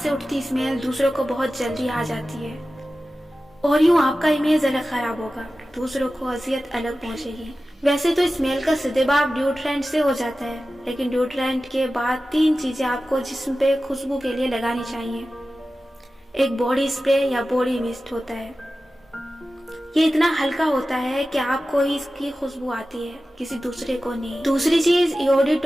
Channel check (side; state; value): both; normal; correlation 0.95